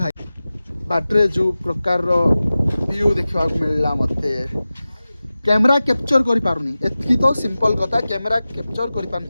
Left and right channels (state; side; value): inverted; both; correlation -0.96